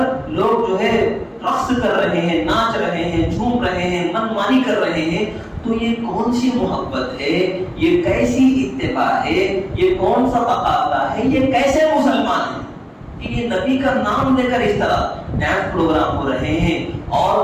لوگ جو ہے رقص کر رہے ہیں، ناچ رہے ہیں، جھوم رہے ہیں، من مانی کر رہے ہیں. تو یہ کون سی محبت ہے؟ یہ کیسی اتباع ہے؟ یہ کون سا تقاضا ہے؟ یہ کیسے مسلمان ہیں کہ یہ نبی کا نام لے کر اس طرح ڈانس پروگرام ہو رہے ہیں؟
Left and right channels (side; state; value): both; identical; correlation 1.00